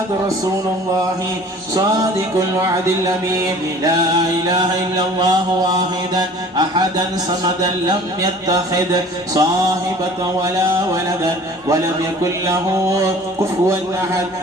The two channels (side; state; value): both; normal; correlation 0.47